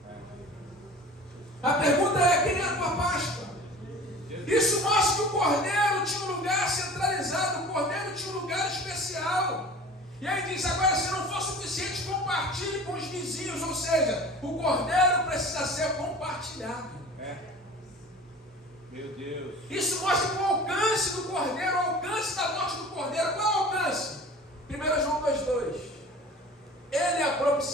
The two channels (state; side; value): normal; both; correlation 0.41